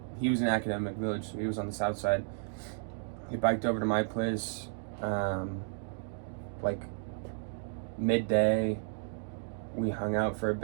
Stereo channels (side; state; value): left; silent; digital silence